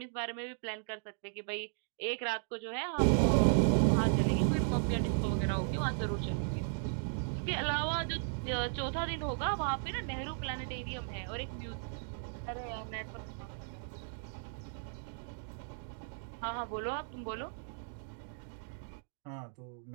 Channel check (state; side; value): silent; left; digital silence